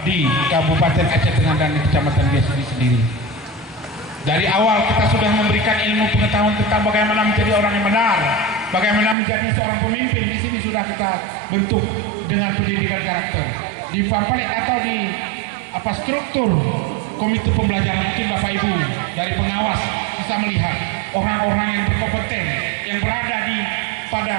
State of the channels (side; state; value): left; drops out; at 9.2 s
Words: di Kabupaten Aceh Tengah dan di Kecamatan dia sendiri. Dari awal kita sudah memberikan ilmu pengetahuan tentang bagaimana menjadi orang yang benar, bagaimana menjadi seorang pemimpin. Di sini sudah kita bentuk dengan pendidikan karakter. Di pamflet atau di struktur komite pembelajaran, mungkin Bapak Ibu dari pengawas bisa melihat orang-orang yang berkompeten yang berada di pada